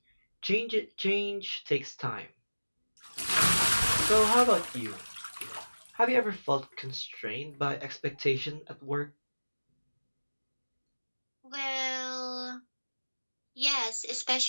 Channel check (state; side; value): inverted; both; correlation -1.00